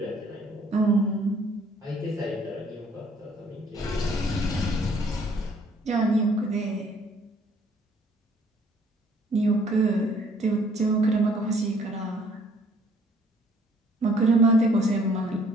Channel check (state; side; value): normal; both; correlation 0.61